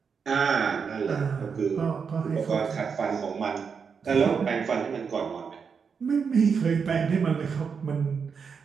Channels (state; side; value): quieter; left; 6.0 dB